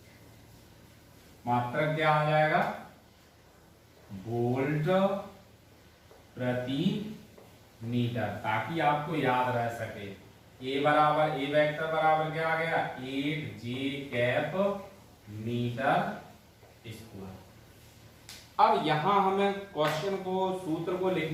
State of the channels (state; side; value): identical; both; correlation 1.00